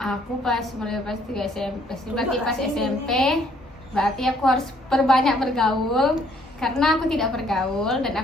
pas mulai pas 3 SMP, berarti pas SMP, berarti aku harus perbanyak bergaul karena aku tidak bergaul dan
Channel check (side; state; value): both; normal; correlation 0.64